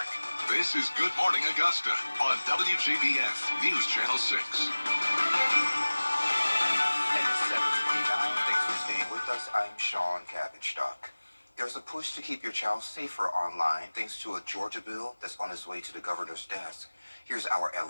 this is Good Morning Augusta on WJBF News Channel 6. And it's 7:29. Thanks for staying with us. I'm Sean Cabbage-Stock. There's a push to keep your child safer online thanks to a Georgia bill that's on its way to the governor's desk. Here's our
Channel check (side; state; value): both; inverted; correlation -1.00